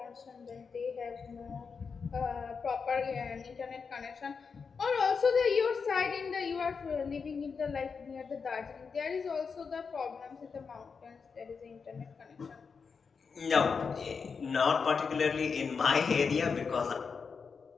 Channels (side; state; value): right; quieter; 5.5 dB